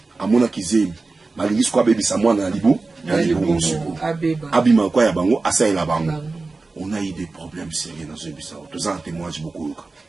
Amona kizemi malingisi kwa baby sa mwana na libu abima kwa ya bango asaila bango. On a eu des problèmes sérieux dans ce bisa. Tous en témoignage beaucoup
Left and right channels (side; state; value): left; quieter; 3.7 dB